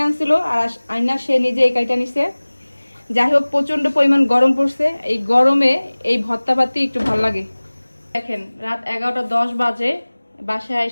আনছিল, আর আইনা সে নিজে এই কাইটা নিছে। যাই হোক, প্রচন্ড পরিমাণ গরম পড়ছে, এই গরমে এই ভর্তা পাতি একটু ভালো লাগে। দেখেন রাত 11:10 বাজে, বাসায়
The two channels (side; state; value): both; inverted; correlation -1.00